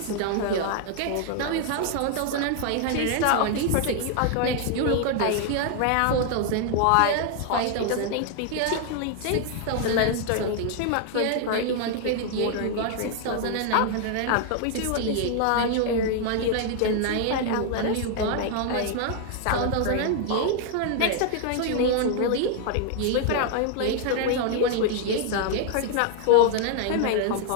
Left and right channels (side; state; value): both; different; correlation 0.00